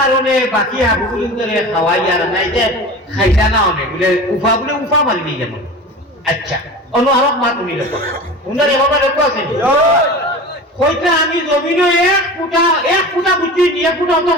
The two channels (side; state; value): both; normal; correlation 0.34